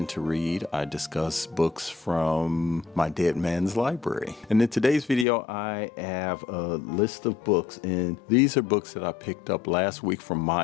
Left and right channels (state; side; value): drops out; right; at 5.2 s